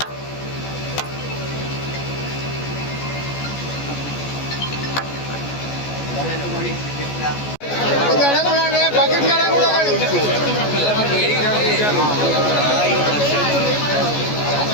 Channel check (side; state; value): right; late; 14 ms